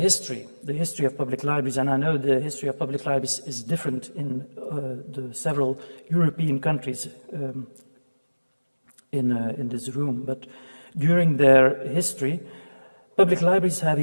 the history of public libraries, and I know the history of public libraries is different in the several European countries in this room, but during their history, public libraries have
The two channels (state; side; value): inverted; both; correlation -1.00